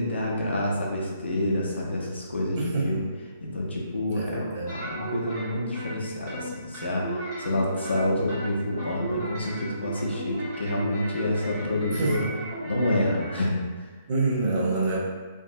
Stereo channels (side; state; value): both; inverted; correlation -0.72